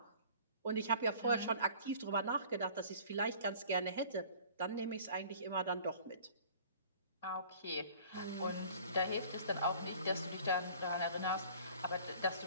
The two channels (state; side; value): inverted; both; correlation -0.48